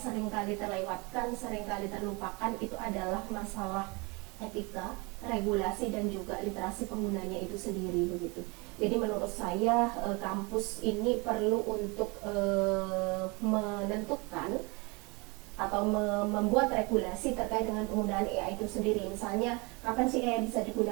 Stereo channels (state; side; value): quieter; left; 28.1 dB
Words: terlewatkan, seringkali terlupakan itu adalah masalah etika, regulasi dan juga literasi penggunanya itu sendiri begitu. Jadi menurut saya kampus ini perlu untuk menentukan atau membuat regulasi terkait dengan penggunaan AI itu sendiri. Misalnya kapan sih AI bisa